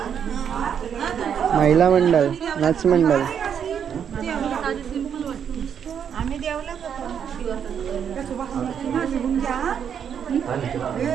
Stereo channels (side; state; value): left; quieter; 8.1 dB